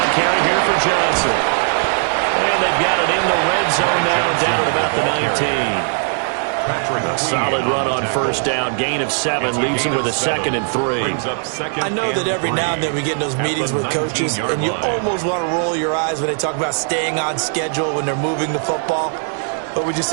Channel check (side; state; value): left; silent; 61 dB below the other